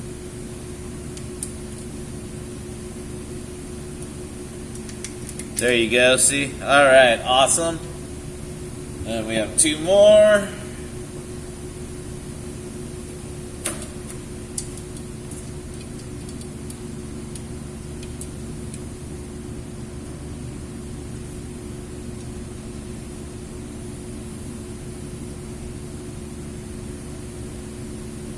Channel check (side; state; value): both; identical; correlation 1.00